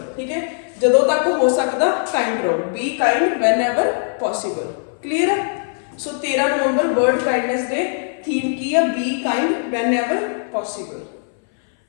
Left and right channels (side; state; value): right; silent; 60 dB below the other